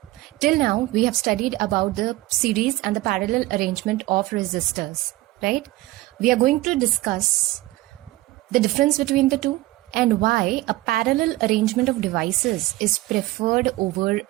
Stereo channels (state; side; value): quieter; left; 18.4 dB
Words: Till now, we have studied about the series and the parallel arrangement of resistors, right? We are going to discuss the difference between the two and why a parallel arrangement of devices is preferred over